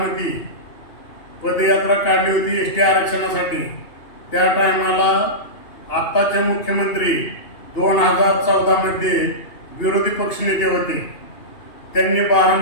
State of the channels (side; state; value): right; late; 2.8 ms